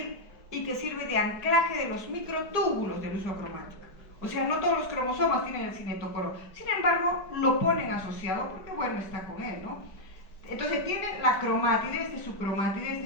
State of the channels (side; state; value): right; late; 4.9 ms